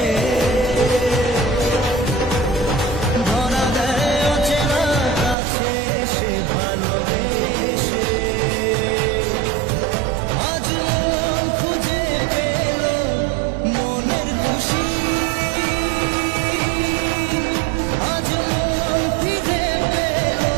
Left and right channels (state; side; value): drops out; left; at 5.4 s